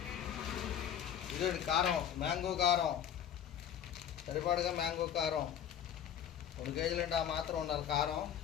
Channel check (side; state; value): right; quieter; 9.6 dB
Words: ఇదండి కారం, మ్యాంగో కారం సరిపడగా. మ్యాంగో కారం 2 కేజీలు అంటే ఆ మాత్రం ఉండాలి కారం.